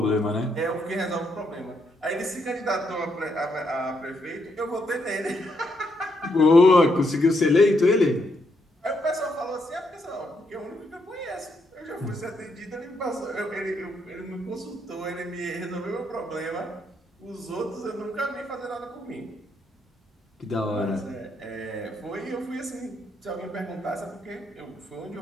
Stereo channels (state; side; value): normal; both; correlation 0.77